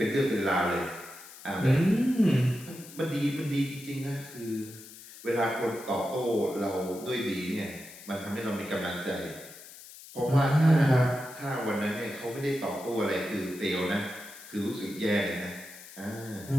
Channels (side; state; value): left; noise; hiss, 17 dB below the sound